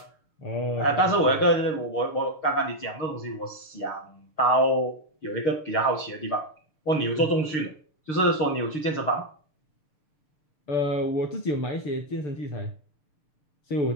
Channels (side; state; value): right; late; 6.7 ms